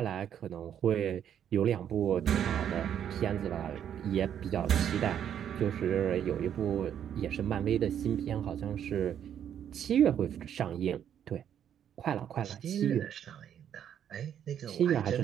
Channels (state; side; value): quieter; left; 9.4 dB